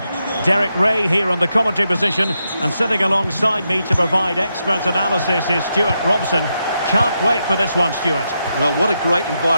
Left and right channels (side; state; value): both; inverted; correlation -0.84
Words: Derek Ray here on the commentary position, and sitting alongside me to provide expert analysis is Stuart Robson. Can't wait for this one, Stuart. Well, what a great